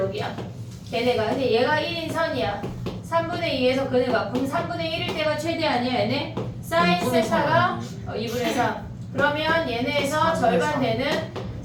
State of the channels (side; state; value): both; identical; correlation 1.00